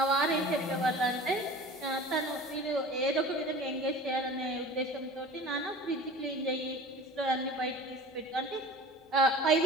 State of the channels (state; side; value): normal; both; correlation 0.41